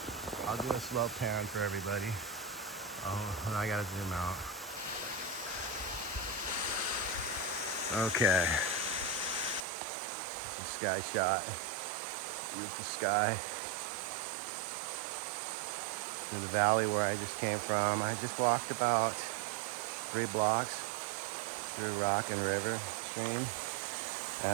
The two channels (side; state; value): left; drops out; at 9.7 s